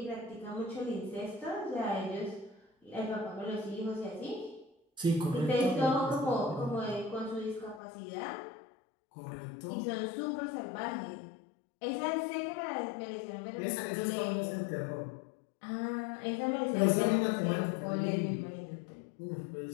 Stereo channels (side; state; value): right; drops out; at 7.8 s